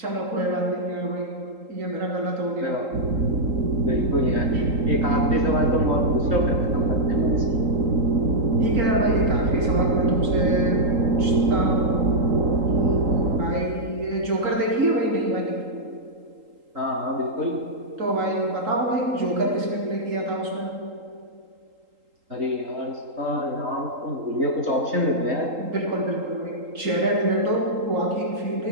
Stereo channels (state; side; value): late; left; 3.8 ms